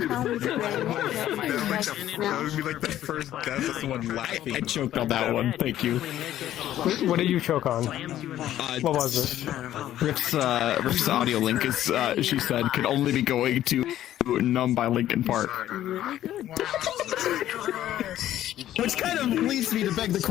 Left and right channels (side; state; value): right; quieter; 12.6 dB